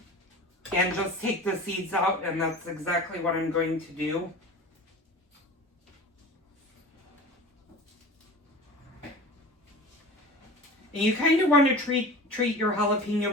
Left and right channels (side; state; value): both; normal; correlation 0.36